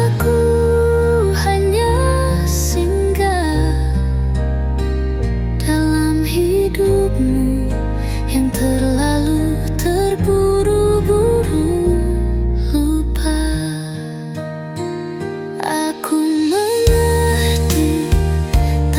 hanya singgah dalam hidupmu yang terlalu terburu-buru lupa. Aku mengerti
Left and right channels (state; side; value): identical; both; correlation 1.00